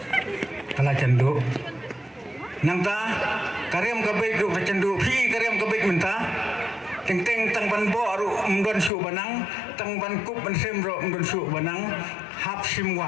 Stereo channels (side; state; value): right; drops out; at 8.9 s